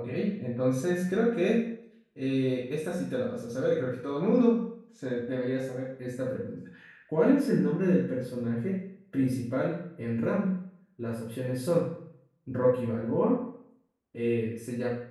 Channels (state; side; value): identical; both; correlation 1.00